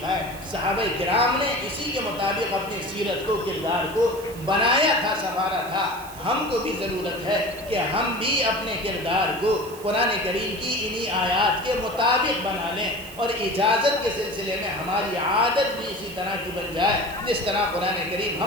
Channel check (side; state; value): right; noise; hiss, 18 dB below the sound